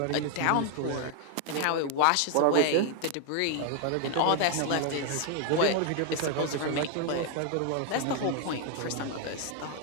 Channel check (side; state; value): both; different; correlation 0.00